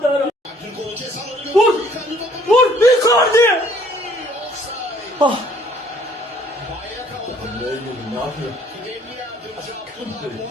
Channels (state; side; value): normal; both; correlation 0.59